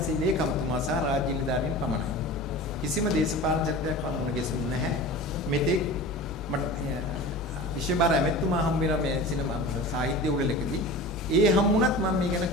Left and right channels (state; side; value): normal; both; correlation 0.34